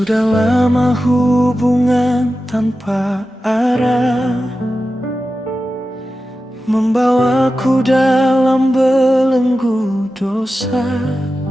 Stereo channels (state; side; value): normal; both; correlation 0.93